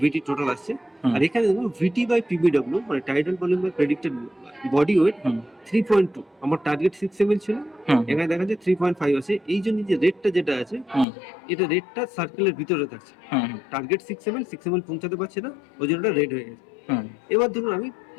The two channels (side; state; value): right; drops out; at 11.1 s